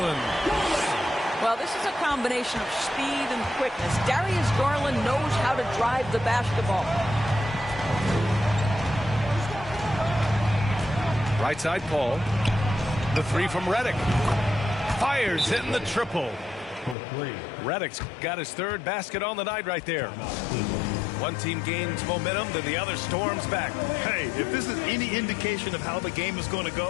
Well, this is a combination of speed and quickness. Darius Garland knows how to drive the basketball. Right side, Paul. The 3 from Redick. Fires, hitting the triple. Redick's got his 3rd basket on the night right there. One team gains momentum, then the other storms back. Hey, if this is any indication of how the game is going to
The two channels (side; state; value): right; drops out; at 16.9 s